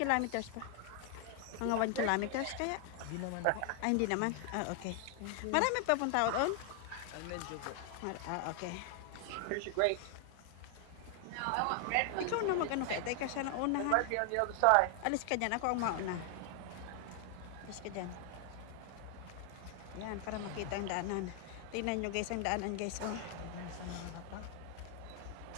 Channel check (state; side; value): different; both; correlation 0.00